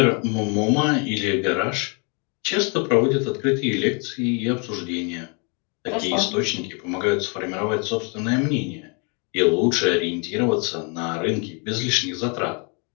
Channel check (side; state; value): right; quieter; 35.3 dB